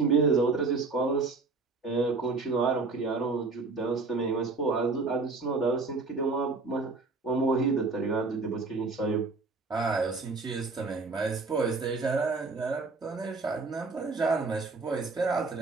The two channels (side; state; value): left; quieter; 3.9 dB